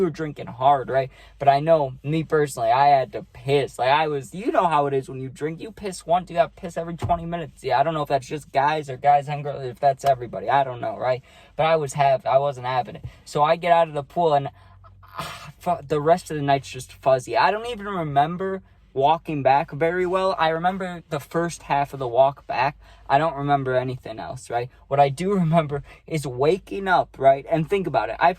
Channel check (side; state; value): both; identical; correlation 1.00